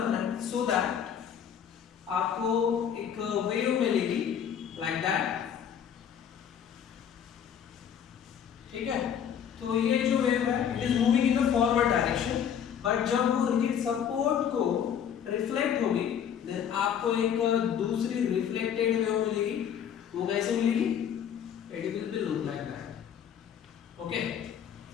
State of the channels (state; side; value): quieter; right; 8.6 dB